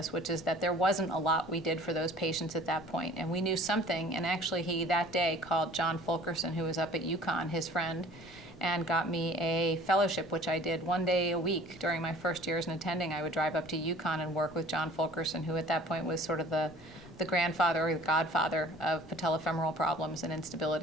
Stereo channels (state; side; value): noise; left; rumble, 23 dB below the sound